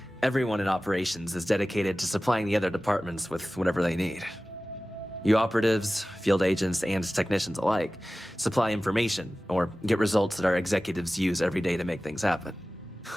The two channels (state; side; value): normal; both; correlation 0.96